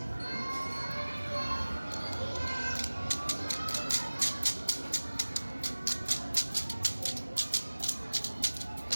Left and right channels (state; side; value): inverted; both; correlation -1.00